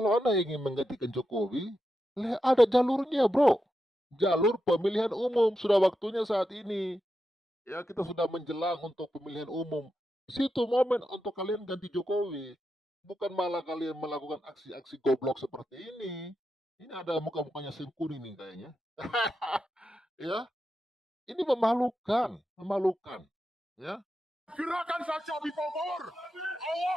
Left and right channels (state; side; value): normal; both; correlation 0.88